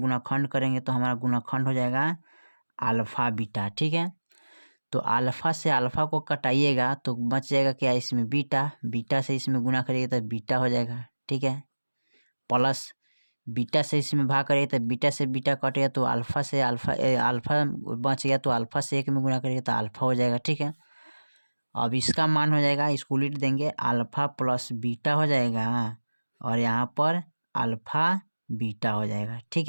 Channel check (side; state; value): both; inverted; correlation -1.00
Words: करेंगे तो हमारा गुणाखंड हो जाएगा अल्फ़ा बीटा। ठीक है, तो अल्फ़ा से अल्फ़ा को कटाइएगा तो बच जाएगा क्या, इसमें बीटा। बीटा से इसमें गुना करिएगा तो बीटा हो जाएगा। ठीक है, प्लस बीटा से इसमें भाग करिए तो बीटा से बीटा कटेगा तो अल्फ़ा से अल्फ़ा बच गया, तो अल्फ़ा से 1 में गुना करिएगा तो अल्फ़ा हो जाएगा। ठीक है, अब इसका मान हो जाएगा, इसको उलट देंगे, अल्फ़ा प्लस बीटा हो जाएगा और यहाँ पर अल्फ़ा बीटा हो जाएगा। ठीक